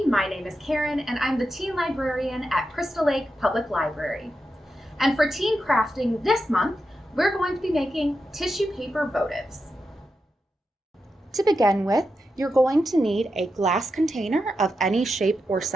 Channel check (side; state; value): both; normal; correlation 0.88